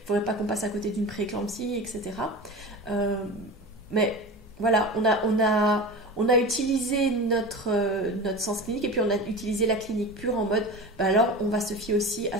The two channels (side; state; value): both; normal; correlation 0.30